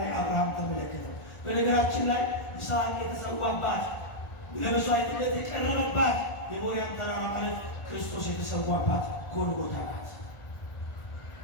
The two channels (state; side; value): late; right; 1.4 ms